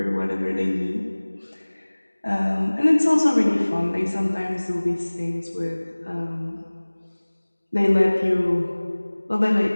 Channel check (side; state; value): both; inverted; correlation -1.00